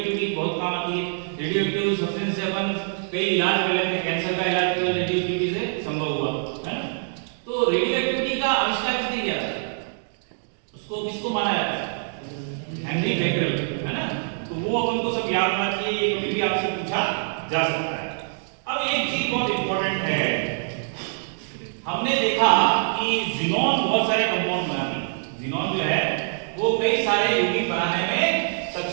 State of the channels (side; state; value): left; silent; digital silence